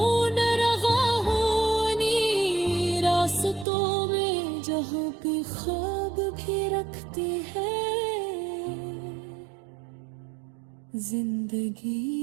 रहा हूँ इन्हीं रास्तों में, जहाँ पे ख्वाब भी रखती है जिंदगी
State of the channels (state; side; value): drops out; left; at 3.7 s